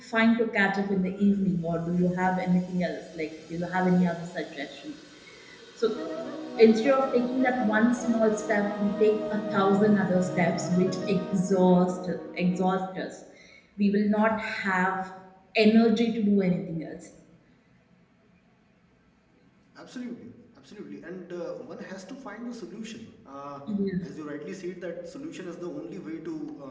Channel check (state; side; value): identical; both; correlation 1.00